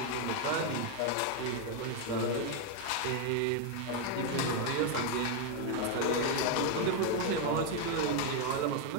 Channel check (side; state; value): both; different; correlation 0.01